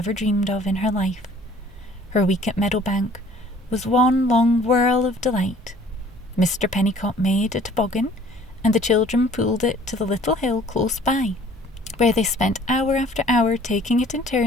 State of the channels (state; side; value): normal; both; correlation 0.53